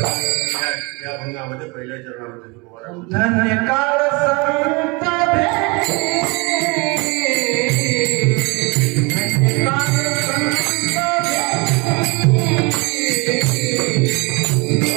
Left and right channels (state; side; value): quieter; left; 28.3 dB